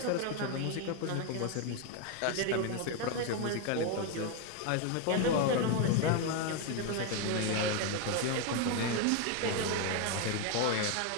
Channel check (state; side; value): different; both; correlation 0.01